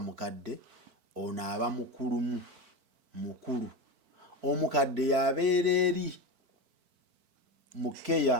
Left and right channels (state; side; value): late; left; 4.5 ms